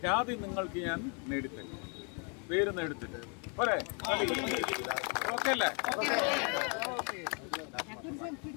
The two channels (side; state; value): right; quieter; 37.5 dB